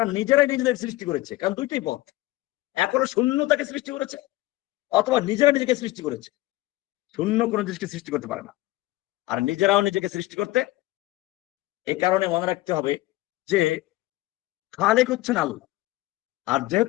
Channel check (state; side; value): quieter; right; 18.1 dB